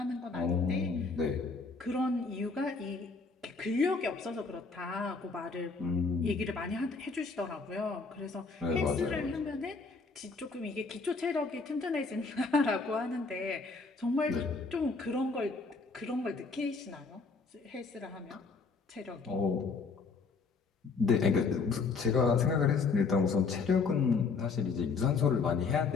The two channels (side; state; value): right; quieter; 4.5 dB